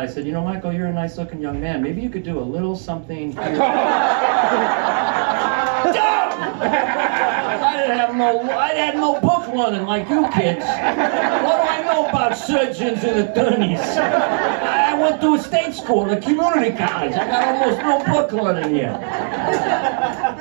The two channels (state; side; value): silent; left; 66 dB below the other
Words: I said, you know, Michael, you're a nice looking young man. Maybe you could do a little something here. I had no book learning like you kids. What do I know about surgeons and attorneys? I went to a state school, a community college. I got almost no book learning here.